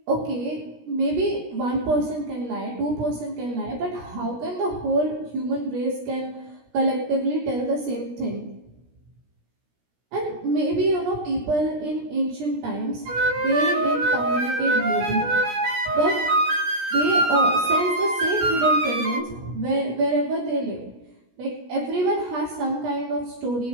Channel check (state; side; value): late; left; 17 ms